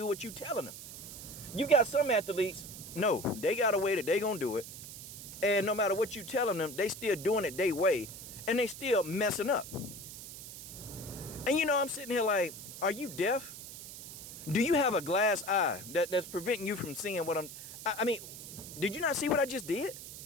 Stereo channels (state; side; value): noise; right; hiss, 12 dB below the sound